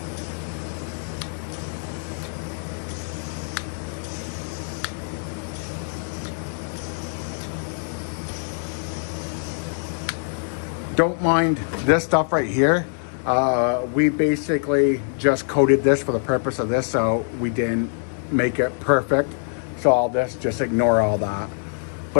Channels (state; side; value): silent; right; 60 dB below the other